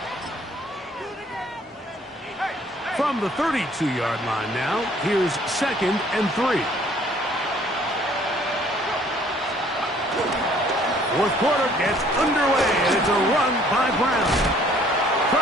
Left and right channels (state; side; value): normal; both; correlation 0.58